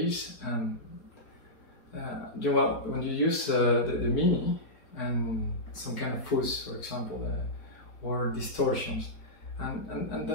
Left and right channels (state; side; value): late; right; 4.6 ms